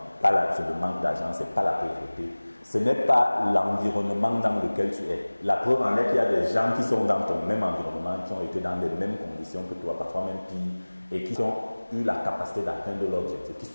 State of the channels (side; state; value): both; inverted; correlation -1.00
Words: c'est le manque d'argent, c'est pas la pauvreté. Ce n'est pas l'environnement dans lequel tu es. La preuve en est qu'il y a des gens qui sont dans ton même environnement, qui ont été dans les mêmes conditions que toi, parfois même pire, et qui ont eu la capacité d'atteindre l'objectif,